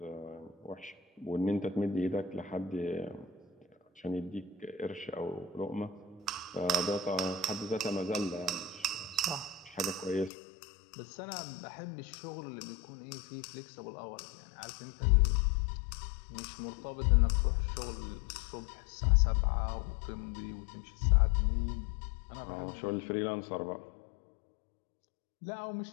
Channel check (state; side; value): drops out; right; at 10.3 s